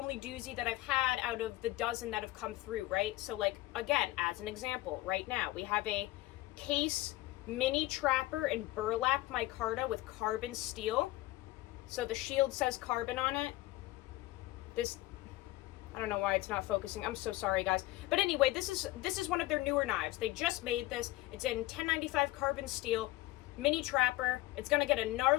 doozy that I've had out of the dozen that have come through, right? So, like, again, as an example, right now, we have a case mini trapper and burlap micarta with carbon steel. So the shield says carbon on it. This, I don't know why it's not focusing. I'm so sorry, guys. But anyway, this is one of their newer knives. They just made this. It's in 1095 carbon steel, mini trapper. It's gonna get a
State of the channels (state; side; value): quieter; right; 18.2 dB